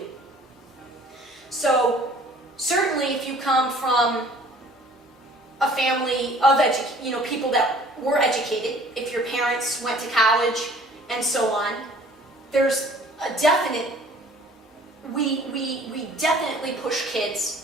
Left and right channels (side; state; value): both; normal; correlation 0.52